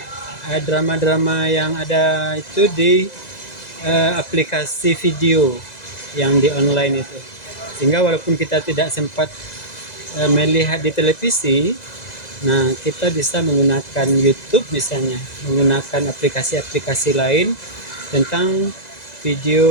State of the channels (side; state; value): right; late; 2.0 ms